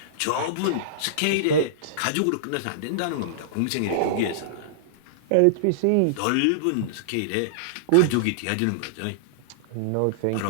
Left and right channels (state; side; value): different; both; correlation -0.02